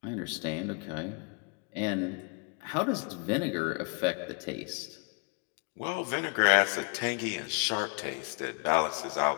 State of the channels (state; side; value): quieter; right; 35.8 dB